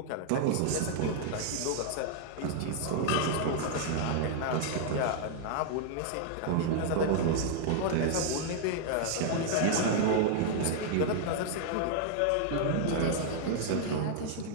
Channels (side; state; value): both; different; correlation 0.00